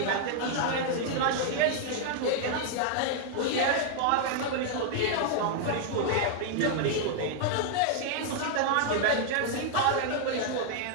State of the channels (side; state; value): both; different; correlation 0.00